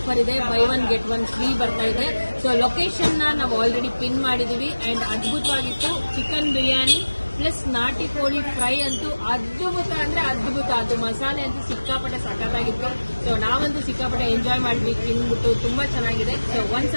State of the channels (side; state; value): both; inverted; correlation -1.00